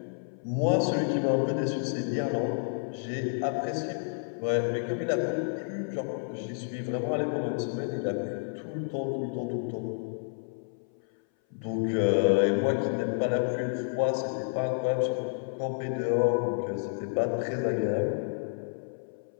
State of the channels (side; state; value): right; silent; 58 dB below the other